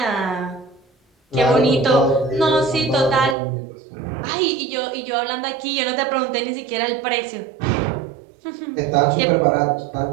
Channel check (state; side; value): drops out; left; at 3.4 s